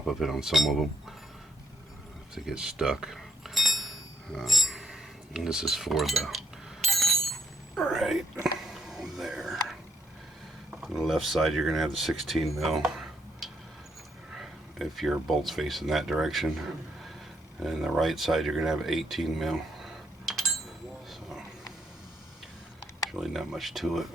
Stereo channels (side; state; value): both; normal; correlation 0.75